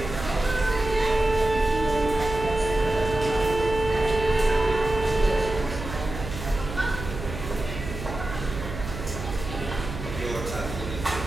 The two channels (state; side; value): noise; right; hum, 8 dB below the sound